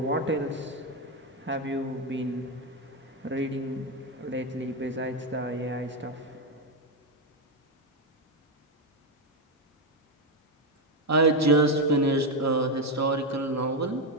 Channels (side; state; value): both; normal; correlation 0.07